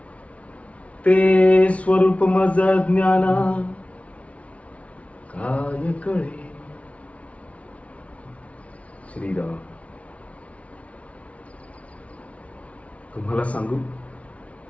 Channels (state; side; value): late; right; 0.064 ms